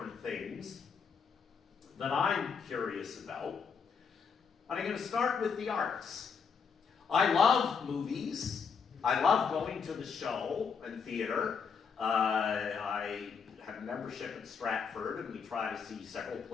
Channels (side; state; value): right; quieter; 6.0 dB